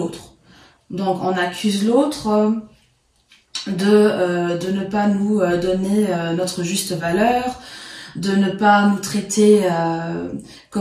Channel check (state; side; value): identical; both; correlation 1.00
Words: Donc on accuse l'autre de ne pas nous donner notre juste valeur, de ne pas nous traiter